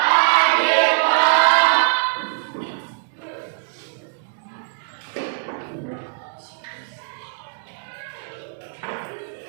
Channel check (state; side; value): silent; left; digital silence